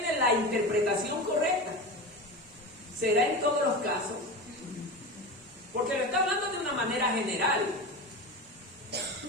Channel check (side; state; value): both; normal; correlation 0.25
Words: la interpretación correcta. ¿Será en todos los casos? Porque lo está hablando de una manera general.